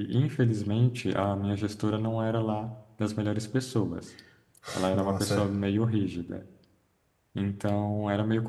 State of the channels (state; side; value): identical; both; correlation 1.00